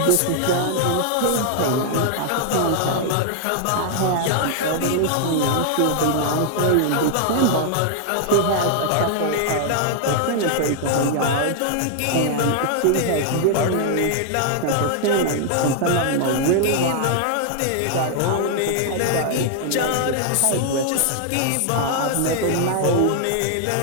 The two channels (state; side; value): different; both; correlation 0.00